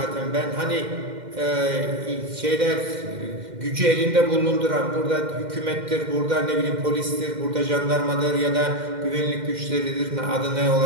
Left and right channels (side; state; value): left; late; 2.1 ms